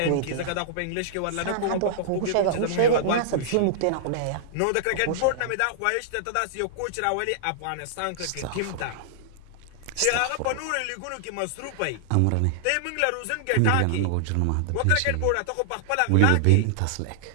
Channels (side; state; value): both; different; correlation -0.01